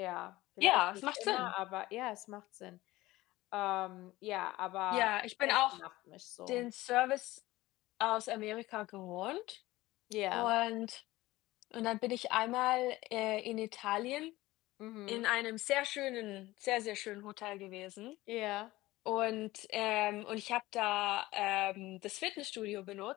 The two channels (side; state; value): right; quieter; 18.3 dB